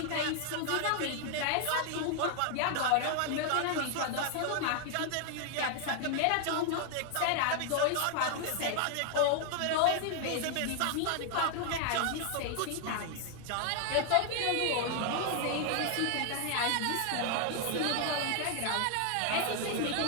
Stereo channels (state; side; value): different; both; correlation 0.00